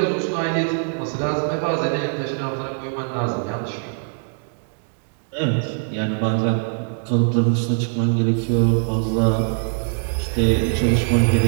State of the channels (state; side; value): silent; left; digital silence